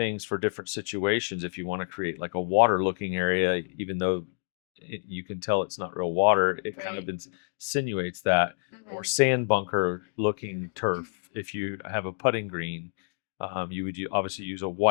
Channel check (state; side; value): silent; right; digital silence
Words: for different situations. If you want to create like a water looking area, even though you can tell it's not real water, it kind of Right. insinuates that. Or Mm-hmm. sand bunker looking turf, if you have a putting green, you would obviously use a